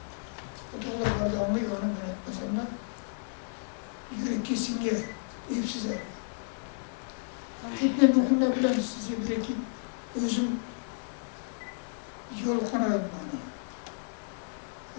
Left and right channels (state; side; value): silent; right; digital silence